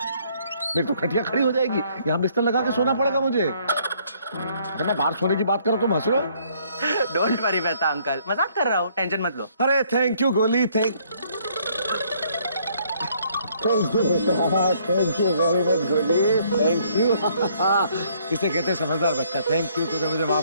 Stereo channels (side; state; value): both; inverted; correlation -0.65